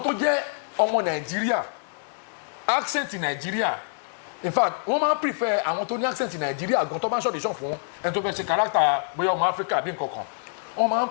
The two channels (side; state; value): right; silent; 61 dB below the other